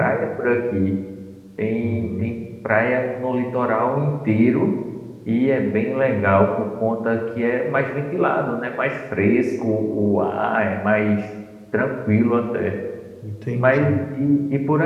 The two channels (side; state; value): both; identical; correlation 1.00